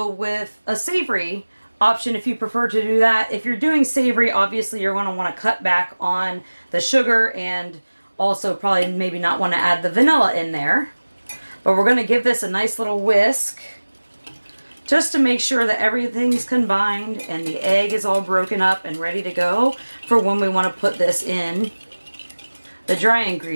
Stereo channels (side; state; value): both; inverted; correlation -1.00